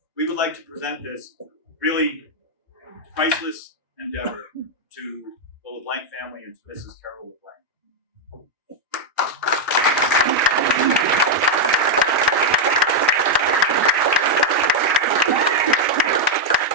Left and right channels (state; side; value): normal; both; correlation -0.01